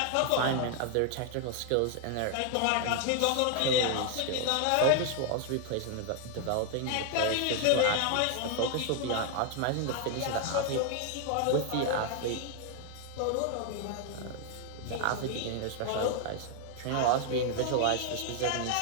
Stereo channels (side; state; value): both; different; correlation 0.00